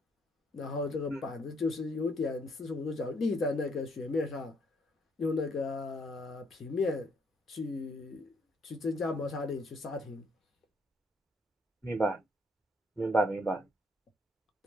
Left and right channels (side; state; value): both; normal; correlation 0.69